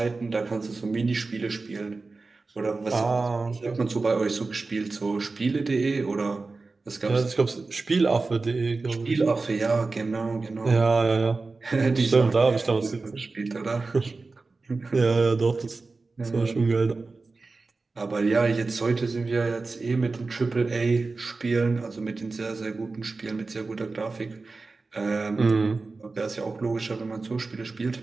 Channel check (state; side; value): quieter; left; 3.8 dB